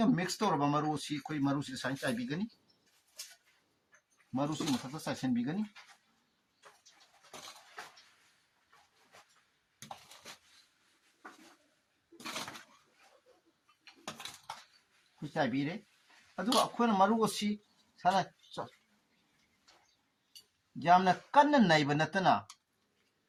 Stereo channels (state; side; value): identical; both; correlation 1.00